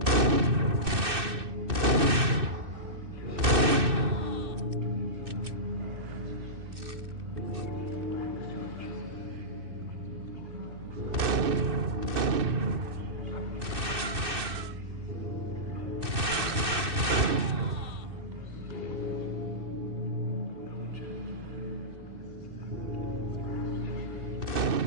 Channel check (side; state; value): left; late; 2.6 ms